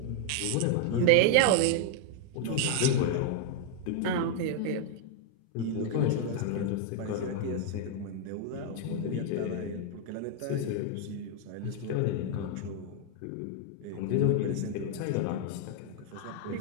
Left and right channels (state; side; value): different; both; correlation 0.00